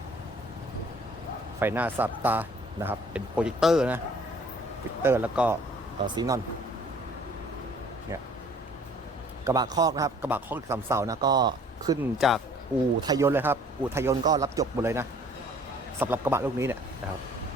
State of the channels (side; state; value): both; normal; correlation 0.55